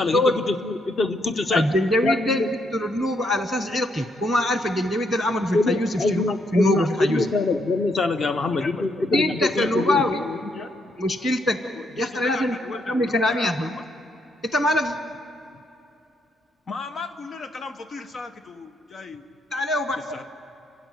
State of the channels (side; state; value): both; normal; correlation 0.75